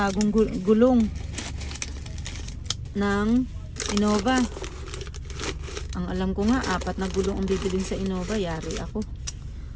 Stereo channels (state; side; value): identical; both; correlation 1.00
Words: gulong ng Innova. Ang alam ko nga, 4 na gulong ang bibilin sa Innova. Yari ako.